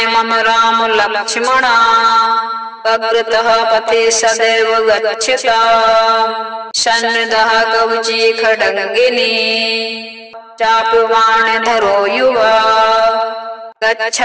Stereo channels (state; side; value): identical; both; correlation 1.00